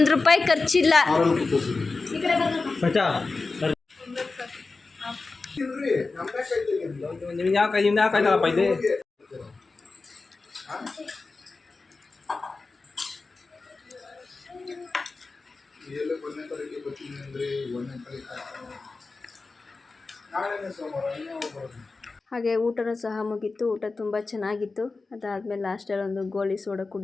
ಖರ್ಚಿಲ್ಲ. ನಿಮ್ಗೆ ಯಾವ ಕಾಯ್ತಾರಪ್ಪ ಇದೆ. ಹಾಗೆ ಊಟನೂ ಸಹ ಮುಗೀತು. ಊಟ ತುಂಬ ಚೆನ್ನಾಗಿತ್ತು. ಅದಾದಮೇಲೆ ಲಾಸ್ಟಲ್ಲಿ ಒಂದು ಗೋಲಿ ಸೋಡಾ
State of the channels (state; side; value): quieter; right; 3.9 dB